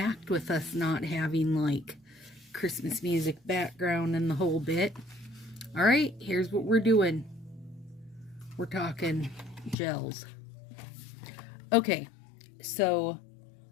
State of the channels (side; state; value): right; drops out; at 9.8 s